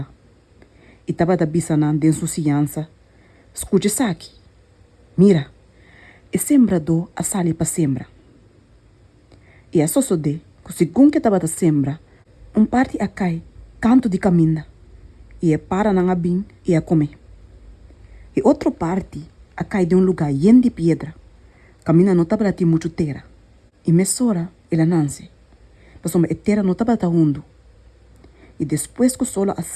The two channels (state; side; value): identical; both; correlation 1.00